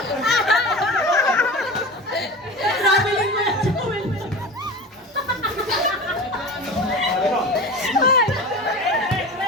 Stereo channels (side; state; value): both; normal; correlation 0.32